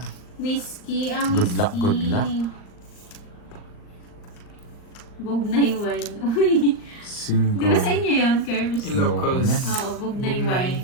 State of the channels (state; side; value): late; right; 39 ms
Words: Whiskey, ang Good luck, whiskey. good luck. Bugnay wine. Uy. Di ba sa 5. inyo yun, Kerbs? Ilocos. yan. Oo, Bugnay Bugnay.